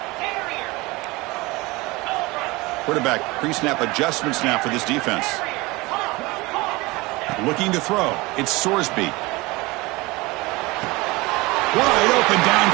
Quarterback pre-snap adjustments now for this defense. Looking to throw. It's Sorsby. Wide open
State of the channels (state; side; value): quieter; left; 22.8 dB